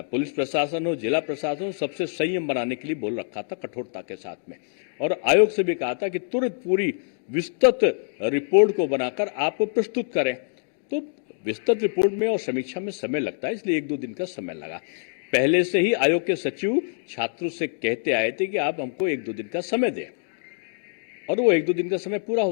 पुलिस प्रशासन हो, जिला प्रशासन हो, सबसे संयम बनाने के लिए बोल रखा था कठोरता के साथ में। और आयोग से भी कहा था कि तुरंत पूरी विस्तृत रिपोर्ट को बनाकर आप प्रस्तुत करें। तो विस्तृत रिपोर्ट में और समीक्षा में समय लगता है, इसलिए 1-2 दिन का समय लगा। पहले से ही आयोग के सचिव छात्रों से कहते आए थे कि आप हमको 1-2 दिन का समय दें, और वो 1-2 दिन का समय पूरा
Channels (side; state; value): right; silent; digital silence